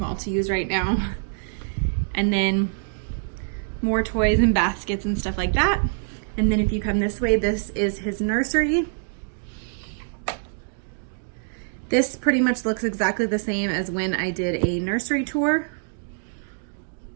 to use right now. And then more toys and baskets and stuff like that. And then if you come this way, this is his nursery. This pretty much looks exactly the same as when I did a nursery tour.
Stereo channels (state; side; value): silent; left; digital silence